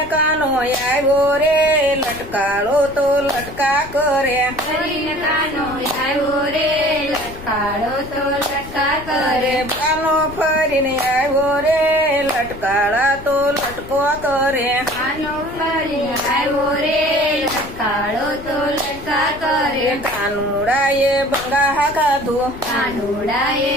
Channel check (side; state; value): left; noise; rumble, 16 dB below the sound